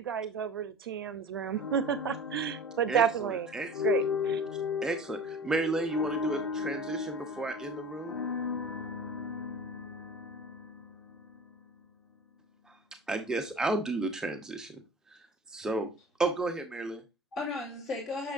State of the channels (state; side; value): normal; both; correlation 0.39